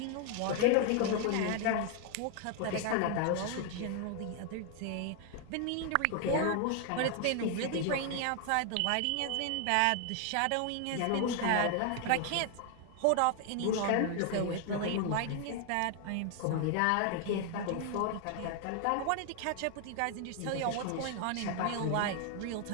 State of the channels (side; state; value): both; different; correlation 0.00